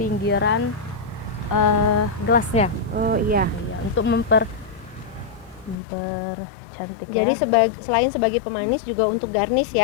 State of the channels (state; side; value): drops out; right; at 5.8 s